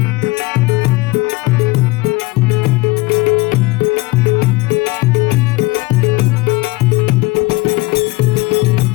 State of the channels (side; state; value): right; quieter; 22.2 dB